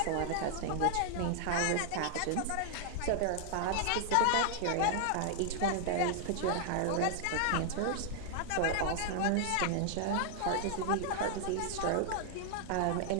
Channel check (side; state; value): both; different; correlation 0.00